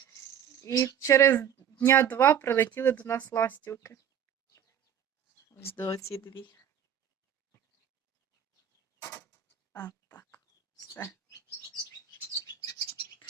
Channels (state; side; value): quieter; left; 9.0 dB